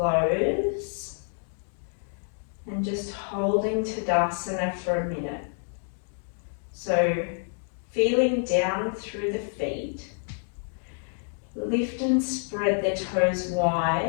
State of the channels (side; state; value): right; silent; 59 dB below the other